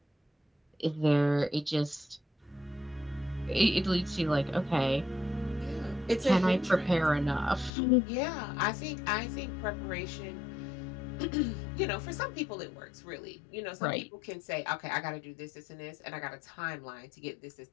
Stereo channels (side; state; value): right; drops out; at 7.7 s